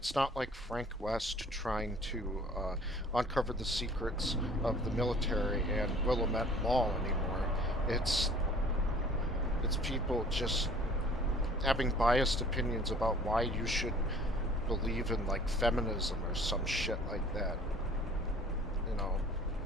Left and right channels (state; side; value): normal; both; correlation 0.51